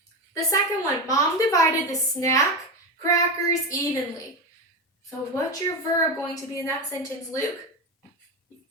The second one, Mom divided the snack crackers neighbors evenly. So what's your verb going to be in that sentence, Luke?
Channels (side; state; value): both; normal; correlation 0.18